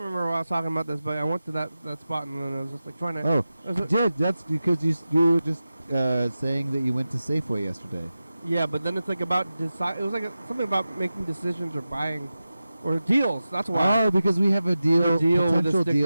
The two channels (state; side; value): inverted; both; correlation -0.94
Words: why I was talking about this, but I went to that spot and then I was just like trying to. Oh, that's because you were just saying that you went to Safeway yesterday. Yeah, but then it's like about it was like something about making decisions or buying, or deals. That's why. Oh, because we have a potential